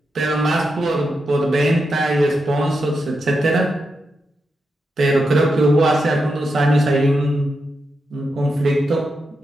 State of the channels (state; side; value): normal; both; correlation 0.86